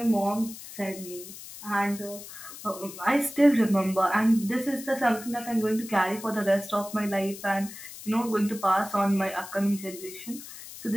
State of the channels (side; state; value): left; noise; hiss, 14 dB below the sound